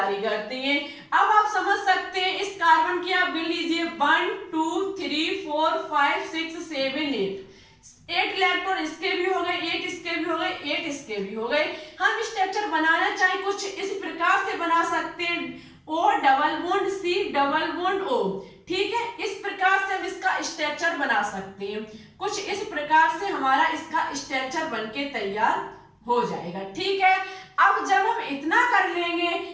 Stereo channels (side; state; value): both; identical; correlation 1.00